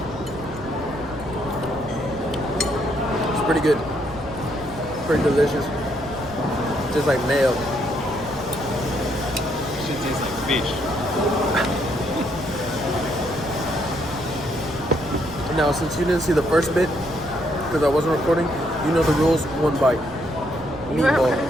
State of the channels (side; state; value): right; noise; rumble, 16 dB below the sound